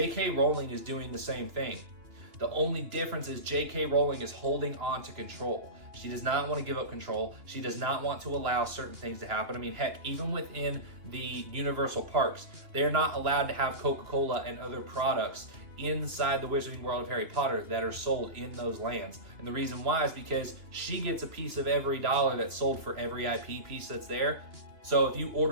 Rowling is doing the same thing. The only difference is JK Rowling is holding on to control. She does not want to give up control. She does not want to allow certain things to happen. I mean, heck, even within the Universal parks, they're not allowed to have Coca-Cola and other products inside the Wizarding World of Harry Potter that are sold in those lands. And the reason why is because she gets a piece of every dollar that's sold for every IP piece that's there. So if you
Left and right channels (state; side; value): late; left; 2.8 ms